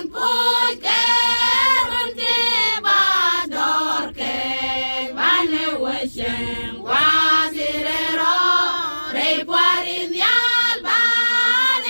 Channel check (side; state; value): both; inverted; correlation -1.00